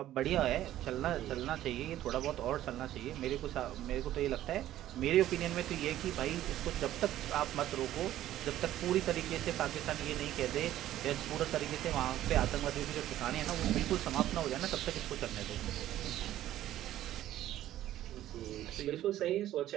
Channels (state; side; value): quieter; left; 13.3 dB